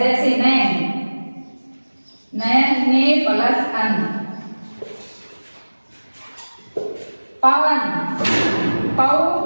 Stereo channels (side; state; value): both; inverted; correlation -1.00